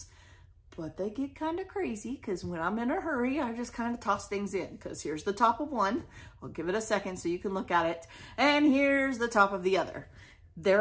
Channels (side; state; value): both; identical; correlation 1.00